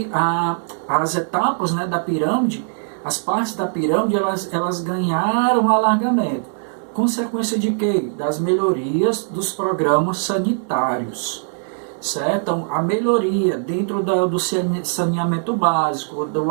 as etapas, né, da pirâmide, as partes da pirâmide, elas ganharam alargamento. Consequência de quê? Das melhorias dos programas sanitários. Certo? Então, a melhoria dentro do saneamento básico, do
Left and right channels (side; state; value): left; silent; digital silence